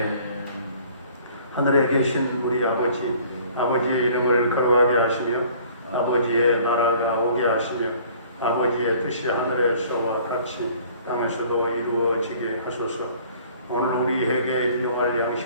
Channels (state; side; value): inverted; both; correlation -0.54